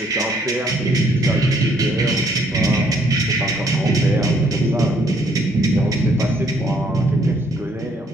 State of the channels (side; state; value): both; normal; correlation 0.67